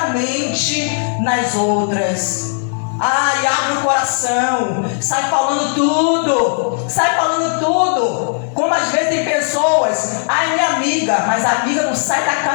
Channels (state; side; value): silent; right; digital silence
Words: nas outras. Ai, abre o coração, sai falando tudo. Como às vezes tem pessoas, ai, minha amiga, mas a amiga não sai da